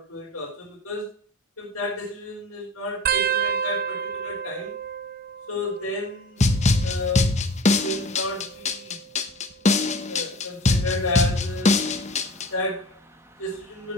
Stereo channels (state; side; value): normal; both; correlation 0.38